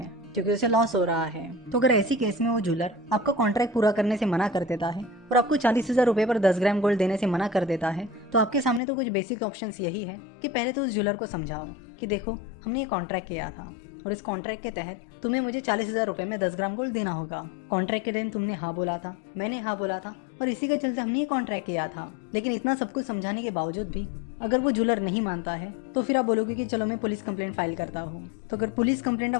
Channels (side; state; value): right; drops out; at 8.8 s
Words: क्योंकि उसे लॉस हो रहा है। तो अगर ऐसी केस में वो ज्वेलर आपका कॉन्ट्रैक्ट पूरा करने से मना कर देता है और आपको 40,000 रुपये पर 10 ग्राम गोल्ड देने से मना कर देता है, तो आपके सामने तो कुछ बेसिक ऑप्शंस यही है कि पहले तो उस ज्वेलर को समझाओ कि देखो, हमने ये कॉन्ट्रैक्ट किया था और इस कॉन्ट्रैक्ट के तहत तुम्हें मुझे 40,000 रुपये में 10 ग्राम गोल्ड देना होगा। कॉन्ट्रैक्ट के दिन तुमने हाँ बोला था, मैंने हाँ बोला था और इसी के चलते हमने ये कॉन्ट्रैक्ट किया था। लेकिन इतना सब कुछ समझाने के बावजूद भी अगर वो ज्वेलर नहीं मानता है, तो फिर आप बोलोगे कि चलो मैं पुलिस कंप्लेंट फाइल करता हूँ। तो अगर पुलिस कंप्लेंट